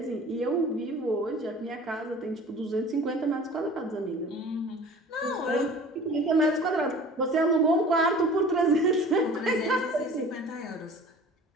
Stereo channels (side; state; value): both; normal; correlation 0.43